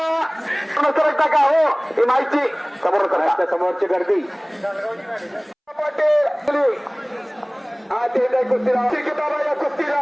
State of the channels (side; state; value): both; identical; correlation 1.00